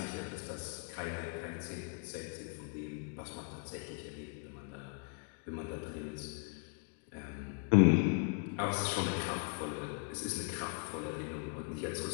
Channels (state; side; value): quieter; right; 39.6 dB